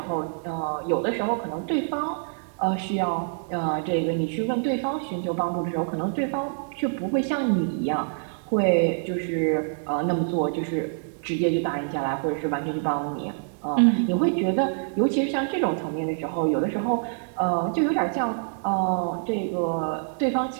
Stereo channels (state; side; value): silent; left; digital silence